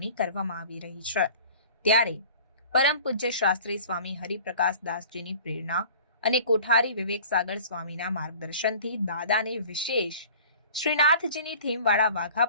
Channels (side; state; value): both; inverted; correlation -0.45